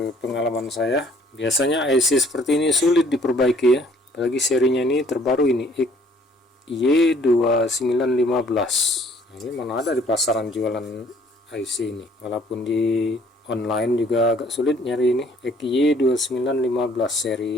saya, biasanya IC seperti ini sulit diperbaiki ya, apalagi serinya ini terbaru ini Y2915. Nah, ini mana ada di pasaran jualan IC ini, walaupun di online juga agak sulit nyari ini Y2915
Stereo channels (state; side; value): normal; both; correlation 0.59